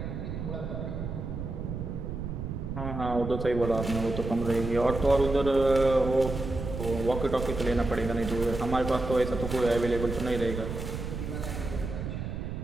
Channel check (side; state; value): right; noise; rumble, 5 dB below the sound